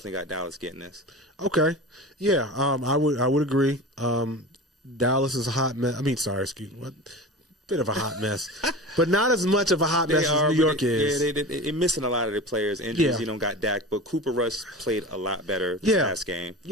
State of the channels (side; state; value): both; normal; correlation 0.32